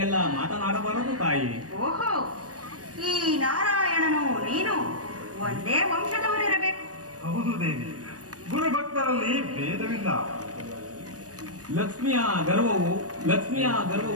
ಮಾತನಾಡಬಾರದು ತಾಯಿ. ಓಹೋ, ಈ ನಾರಾಯಣನು ನೀನು ಒಂದೇ ವಂಶದವರಿರಬೇಕು. ಹೌದು ದೇವಿ, ಗುರುಭಕ್ತರಲ್ಲಿ ಭೇದವಿಲ್ಲ. ಲಕ್ಷ್ಮಿಯ ಗರ್ವವು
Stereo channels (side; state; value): left; late; 0.67 ms